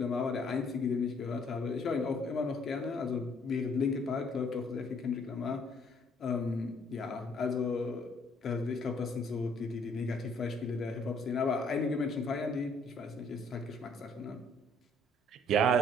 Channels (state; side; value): normal; both; correlation 0.63